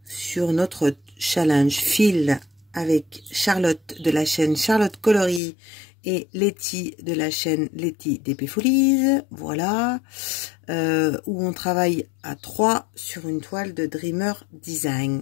sur notre challenge fil avec Charlotte de la chaîne Charlotte Coloris et Letty de la chaîne Letty d'Épée Folies, voilà, où on travaille à 3 sur une toile de Dreamer Design,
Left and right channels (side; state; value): right; drops out; at 5.4 s